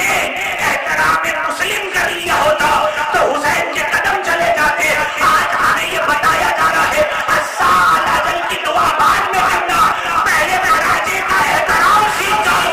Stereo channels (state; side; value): identical; both; correlation 1.00